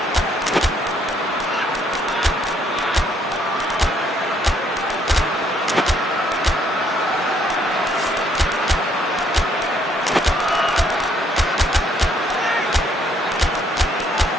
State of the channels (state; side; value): normal; both; correlation 0.68